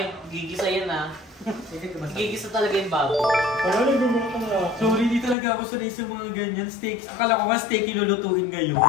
gigisa yan ah. Gigisa talaga yung baboy. Wala na gumawa ka na. Sorry, di talaga ako sanay sa mga ganyan steaks. Akala ko nga steak ilulutuin ngayon.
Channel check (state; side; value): drops out; right; at 5.4 s